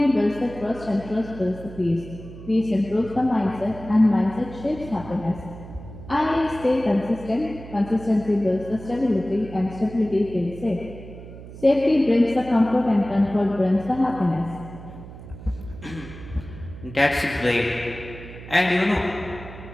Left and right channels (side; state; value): right; noise; hum, 15 dB below the sound